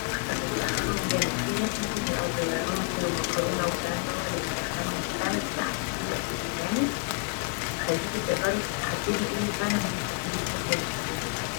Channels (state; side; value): quieter; right; 32.3 dB